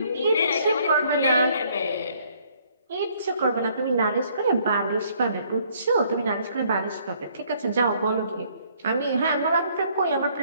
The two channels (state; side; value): inverted; both; correlation -0.64